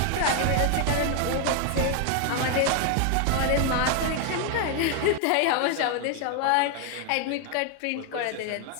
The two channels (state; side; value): different; both; correlation 0.00